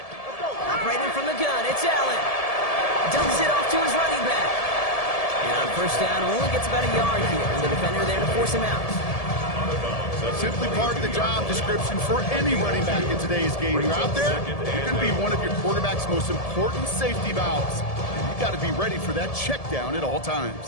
from the gun, it's Allen. Dumps it off to his running back. And on first down, only gets about a yard here. And the defender there to force him out. Simply part of the job description for any running back in today's game. You're out there, you're going to be one of your quarterback's most important safety valves. And you've got to be ready for that check down at all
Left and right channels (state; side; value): late; right; 1.7 ms